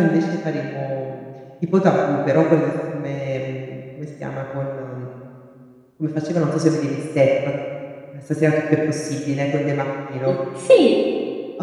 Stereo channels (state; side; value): identical; both; correlation 1.00